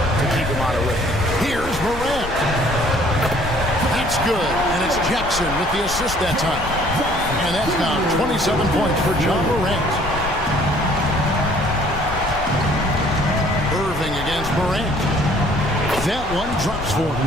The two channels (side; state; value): left; noise; rumble, 10 dB below the sound